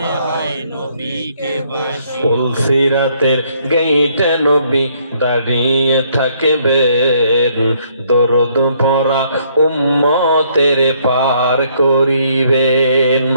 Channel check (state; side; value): inverted; both; correlation -0.68